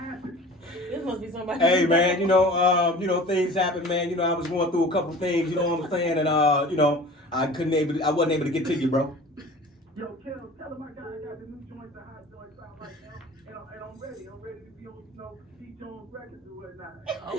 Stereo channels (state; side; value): normal; both; correlation 0.42